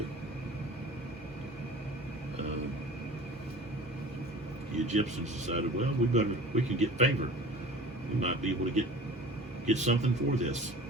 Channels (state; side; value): normal; both; correlation 0.41